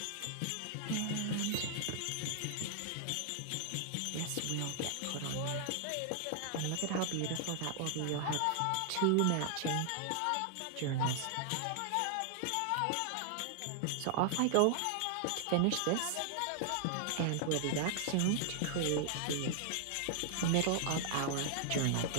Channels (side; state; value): both; different; correlation 0.00